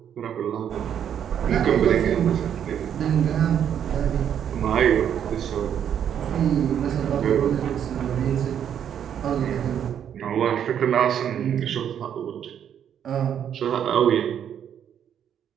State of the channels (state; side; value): quieter; left; 9.1 dB